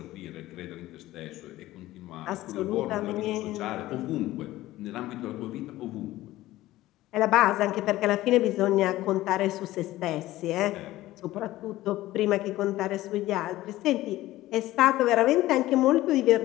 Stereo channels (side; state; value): right; quieter; 16.2 dB